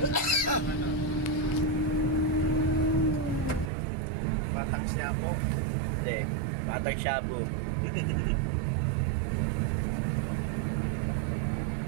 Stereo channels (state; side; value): drops out; left; at 3.7 s